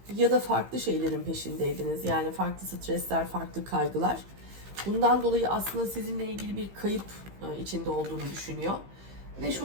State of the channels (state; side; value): late; left; 15 ms